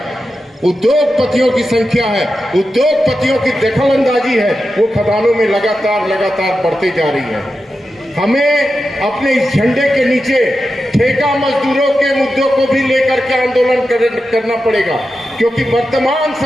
उद्योगपतियों की संख्या है, उद्योगपतियों की दखलंदाजी है, वो खदानों में लगातार बढ़ती जा रही है। हमें अपने इस झंडे के नीचे ठेका मजदूरों के मुद्दों को भी लेकर के आंदोलन करना पड़ेगा, क्योंकि वर्तमान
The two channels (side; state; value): both; normal; correlation 0.90